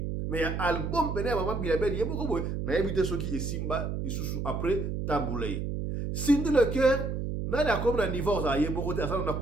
mais album pene maman Bilabel yeboko boy na yebite soki esimba isusu après Taboulei Cindy le cœur. Nana comme le niveau ça y est beaucoup de ça on a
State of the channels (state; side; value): noise; right; hum, 2 dB below the sound